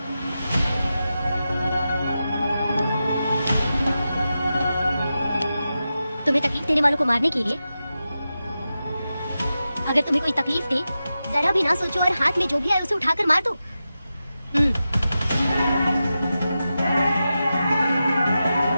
तुम्हें तकलीफ देने वालों को मारने के लिए? अगर तुम्हें कोई तकलीफ दे, जरा भी ना सोचो और हाथ में जो भी आए उसे उठाकर मार दो।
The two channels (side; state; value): both; inverted; correlation -0.91